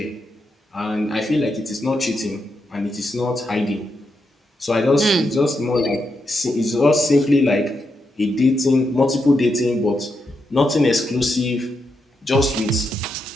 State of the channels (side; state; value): both; normal; correlation 0.83